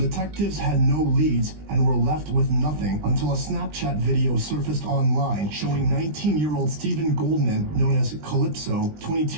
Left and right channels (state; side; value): late; left; 20 ms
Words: had no leads and were left with nothing until a Snapchat video surfaced online showing 19-year-old Stephen Goldman, known as Calypso,